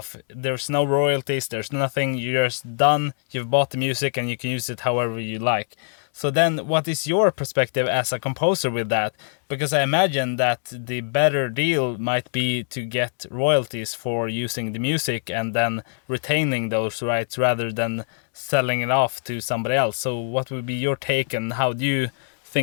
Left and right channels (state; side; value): silent; right; digital silence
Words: There's no royalties, there's nothing, you're just done, you've bought the music and you can use it however you like. So then what is your perspective as a composer with that? Because I imagine that the better deal might be to get royalties for using the music and then retaining those rights rather than selling it off to somebody else. So what would be your take and how do you